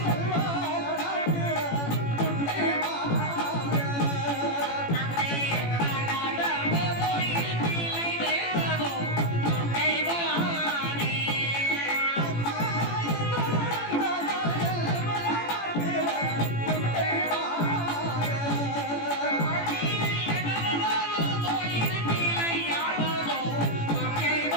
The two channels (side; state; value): right; late; 18 ms